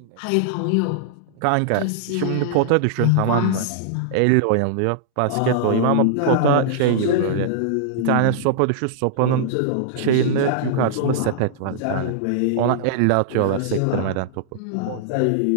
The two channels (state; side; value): different; both; correlation -0.01